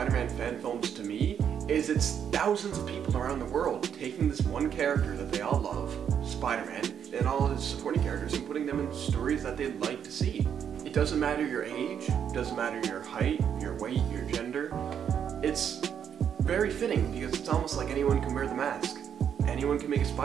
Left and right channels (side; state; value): left; quieter; 8.3 dB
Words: fan films to me is it's thousands of people around the world taking this one character that they all love, Spider-Man, and all his supporting characters and putting them in stories that they'd like to see. It doesn't matter your age, it doesn't matter your height, your weight, your gender. It's very fitting because it's almost like anyone can wear the mask. Anyone can make a